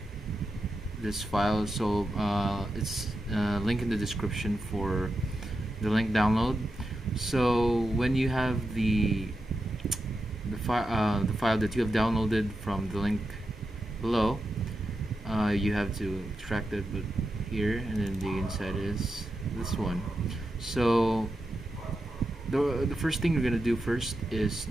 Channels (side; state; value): both; normal; correlation 0.88